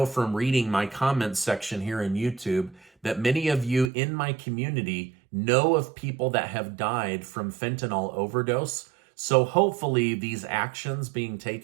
from reading my comments section here in YouTube that many of you in my community know of people that have died from fentanyl overdose. So hopefully these actions being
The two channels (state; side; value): drops out; left; at 3.9 s